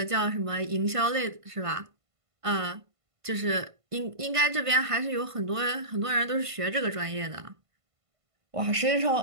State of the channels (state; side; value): late; left; 1.5 ms